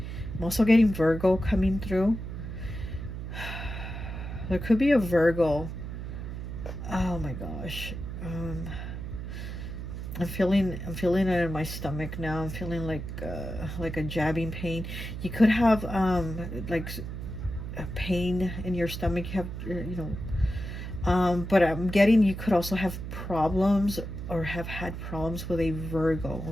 also getting Virgo coming through. There could be a Virgo. Oh my gosh. I'm feeling it in my stomach now. I'm feeling like a jabbing pain. You could have like a pain in your stomach. You have, you know, but I'm getting you could also have problems or have had problems with a Virgo,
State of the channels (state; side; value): noise; right; hum, 7 dB below the sound